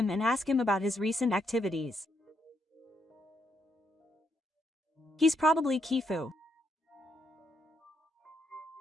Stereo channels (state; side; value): normal; both; correlation 0.77